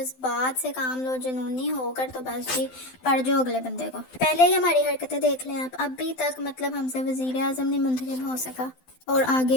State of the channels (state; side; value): late; right; 12 ms